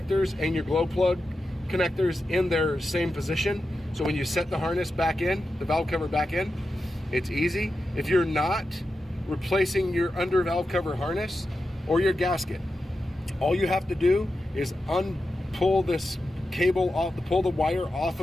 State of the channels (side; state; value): both; normal; correlation 0.90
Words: and your glow plug connectors in their same position. So when you set the harness back in, the valve cover back in, it's easy. If you're not replacing your under valve cover harness or your gasket, all you have to do is pull this cable off, pull the wire off